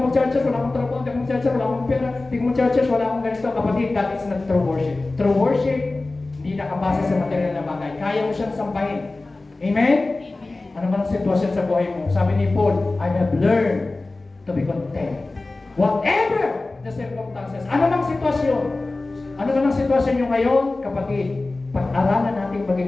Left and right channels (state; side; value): quieter; right; 3.2 dB